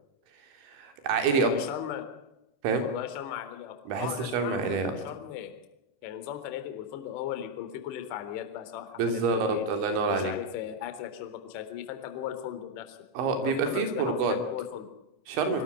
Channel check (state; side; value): late; left; 14 ms